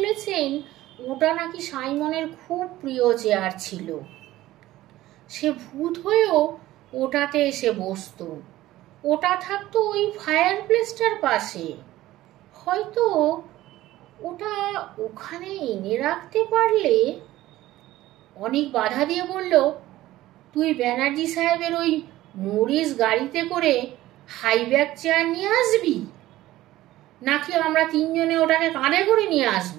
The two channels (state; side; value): quieter; left; 15.8 dB